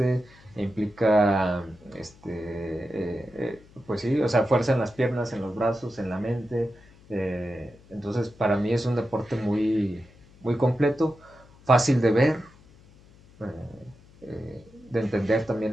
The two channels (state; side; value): noise; left; hum, 25 dB below the sound